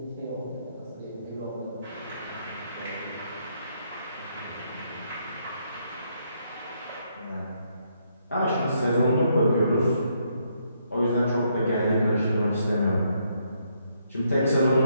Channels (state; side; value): inverted; both; correlation -0.74